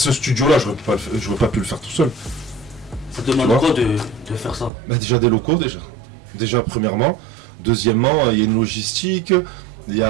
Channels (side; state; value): left; drops out; at 4.7 s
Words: studio-là, j'aurais pas pu le faire tout seul. Ça demande quoi de faire ça? Déjà des locaux, déjà premièrement. Deuxièmement, il y a une logistique, il y